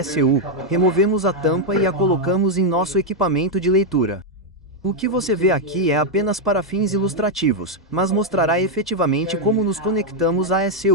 removemos a tampa e a colocamos em nosso equipamento de leitura. O que você vê aqui é apenas para fins ilustrativos, mas mostrará efetivamente como nos conectamos à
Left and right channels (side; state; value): both; normal; correlation 0.00